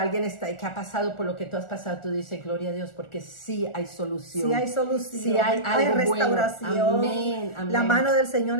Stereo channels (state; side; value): late; right; 1.4 ms